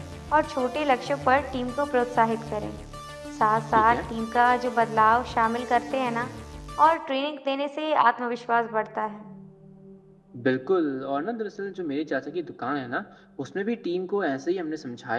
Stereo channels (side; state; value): both; identical; correlation 1.00